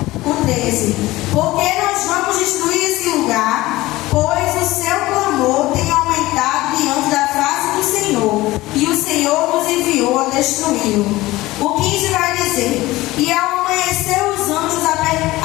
O 13: Porque nós vamos destruir esse lugar, pois o seu clamor tem aumentado diante da face do Senhor,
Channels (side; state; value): right; quieter; 18.5 dB